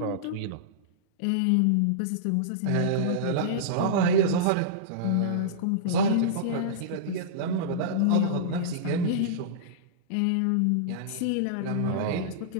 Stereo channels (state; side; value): different; both; correlation -0.04